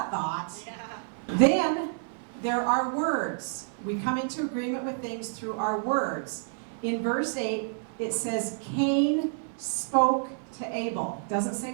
thought. Yeah. Then there are words. We come into agreement with things through our words. In verse 8, it says, Cain spoke to Abel. Doesn't say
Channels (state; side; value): silent; left; 59 dB below the other